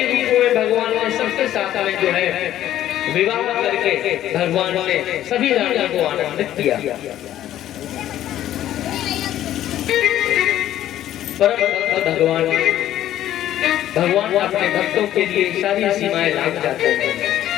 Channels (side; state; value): right; quieter; 12.5 dB